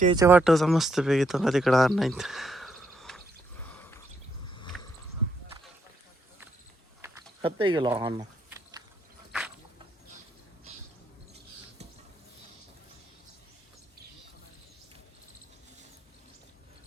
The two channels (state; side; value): normal; both; correlation 0.76